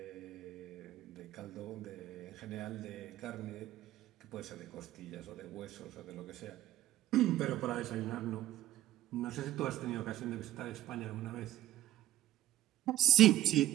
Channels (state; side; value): quieter; left; 13.3 dB